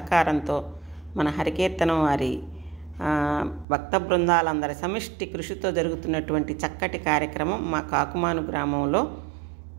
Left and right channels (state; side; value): drops out; left; at 3.7 s